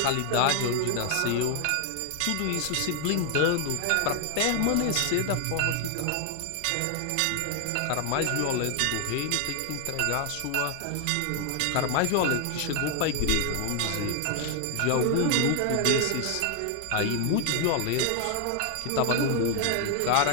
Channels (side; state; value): both; different; correlation 0.00